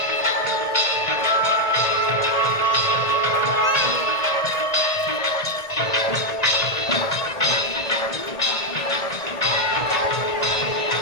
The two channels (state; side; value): late; right; 1.8 ms